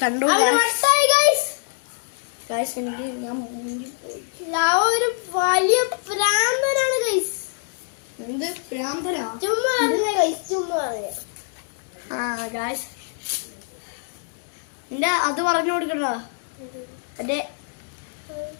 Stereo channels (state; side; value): silent; right; digital silence